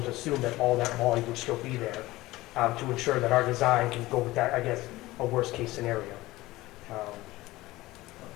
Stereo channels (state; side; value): quieter; right; 18.5 dB